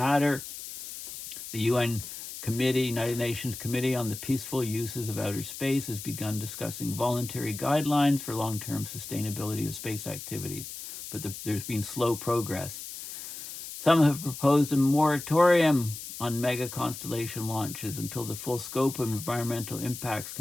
The United Nations Committee on the Peaceful Uses of Outer Space has begun discussing voluntary guidelines for long-term sustainability of space activities, but there's been slow progress. Some have proposed a moratorium on mega-constellation launches until the full scope of environmental impacts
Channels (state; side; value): noise; left; hiss, 10 dB below the sound